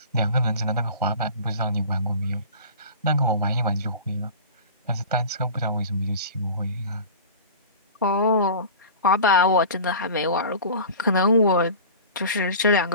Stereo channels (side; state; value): both; inverted; correlation -0.37